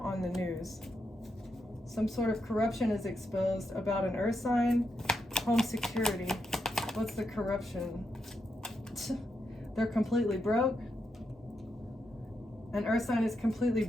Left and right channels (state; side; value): normal; both; correlation 0.83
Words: the news. Some sort of corruption is exposed about an earth sign. Home security. What's the corruption? They're completely broke. An earth sign is completely